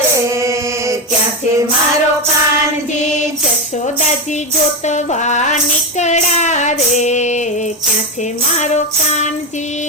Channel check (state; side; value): normal; both; correlation 0.13